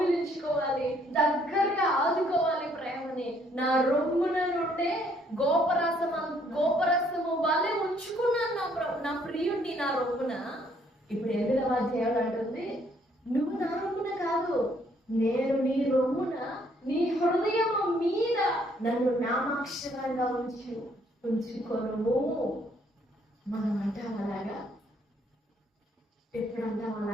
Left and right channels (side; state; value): both; normal; correlation 0.66